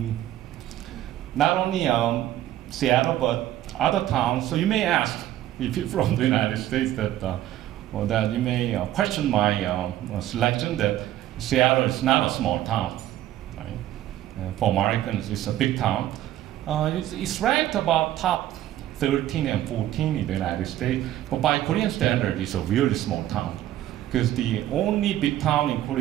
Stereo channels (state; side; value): quieter; left; 13.2 dB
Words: not only Seattle, but other towns. So you may ask, if you're from the United States, that you may question my selection, that Seattle is not a small town. Right? For Americans, it's a big town. It's ranked about top 13 and 14 in the United States, but by Korean standard, it's a really small town. Because the only big town in